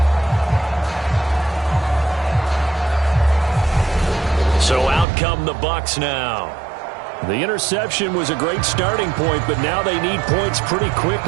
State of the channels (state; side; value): drops out; left; at 5.1 s